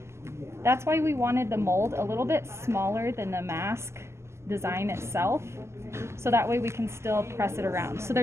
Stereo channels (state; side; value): late; left; 0.13 ms